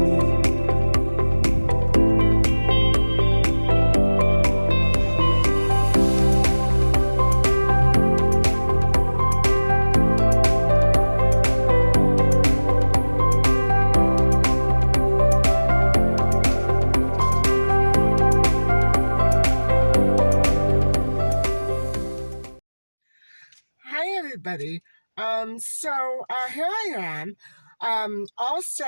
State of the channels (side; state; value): both; inverted; correlation -1.00